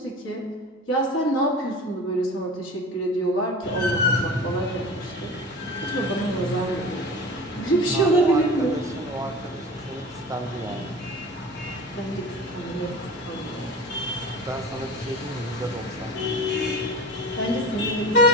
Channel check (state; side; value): normal; both; correlation 0.35